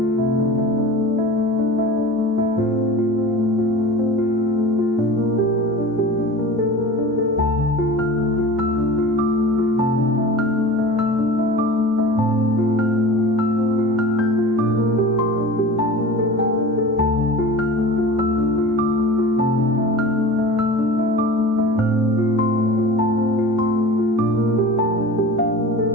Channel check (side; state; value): both; normal; correlation 0.36